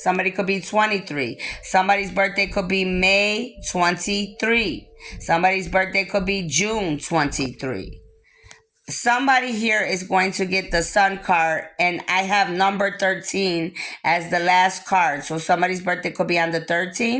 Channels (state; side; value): identical; both; correlation 1.00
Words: could be 23. Somebody's birthday could be May 23. Somebody's birthday could be June 23. Somebody here is going to get the Sun card, and I have number 13 as the last card. So somebody's birthday could be on the